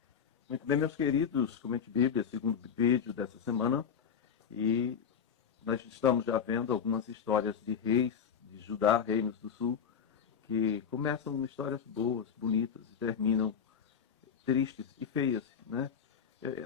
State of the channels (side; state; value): right; quieter; 7.2 dB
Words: Muito bem, meus queridos, Comente Bíblia, segundo vídeo dessa semana, e nós estamos já vendo algumas histórias de reis de Judá, reinos do sul, que começam histórias boas, bonitas, e terminam tristes e feias, né?